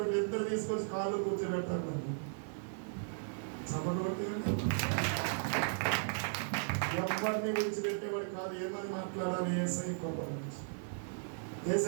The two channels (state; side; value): silent; left; digital silence